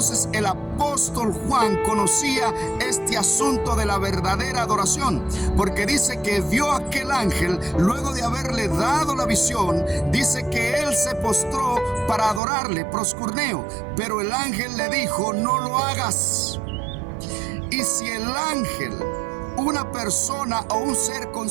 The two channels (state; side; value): drops out; left; at 12.4 s